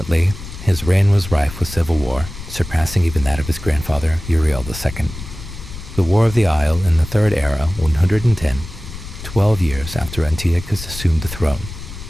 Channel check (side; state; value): left; noise; rumble, 12 dB below the sound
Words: his reign was rife with civil war, surpassing even that of his grandfather, Uriel II. The War of the Isle in the Third Era, 110, 12 years after Antiochus assumed the throne,